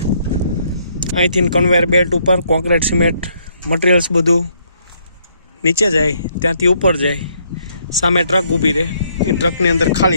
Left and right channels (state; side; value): inverted; both; correlation -0.70